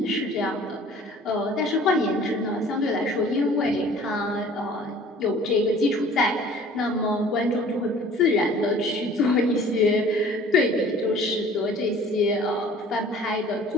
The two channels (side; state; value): both; normal; correlation 0.49